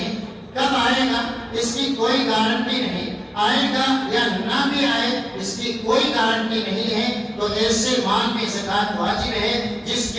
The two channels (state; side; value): identical; both; correlation 1.00